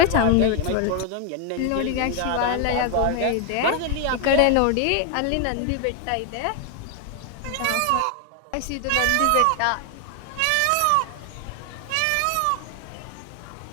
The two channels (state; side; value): different; both; correlation 0.00